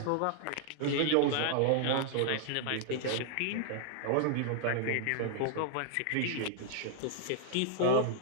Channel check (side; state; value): both; different; correlation 0.00